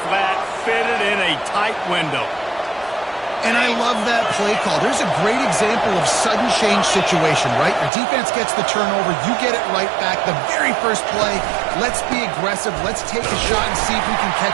flat fit it in a tight window. And I love that play call. There's a great example of sudden change situation, right? Your defense gets the turnover. You get it right back. The very first play, let's be aggressive. Let's take a shot and see if we can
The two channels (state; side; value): drops out; left; at 7.9 s